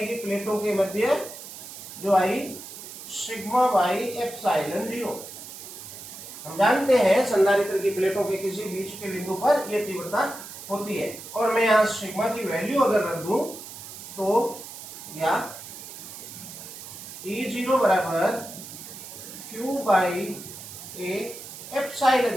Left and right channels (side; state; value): right; noise; hiss, 13 dB below the sound